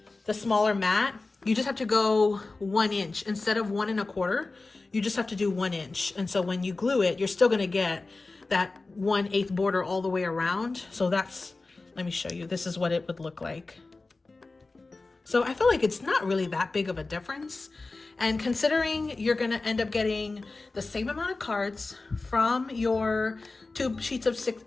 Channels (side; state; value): right; quieter; 3.5 dB